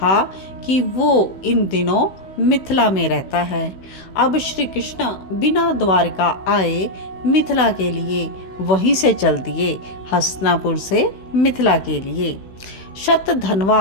कि वो इन दिनों मिथिला में रहता है। अब श्री कृष्ण बिना द्वारका आए मिथिला के लिए वहीं से चल दिए, हस्तिनापुर से मिथिला के लिए।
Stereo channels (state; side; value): late; right; 16 ms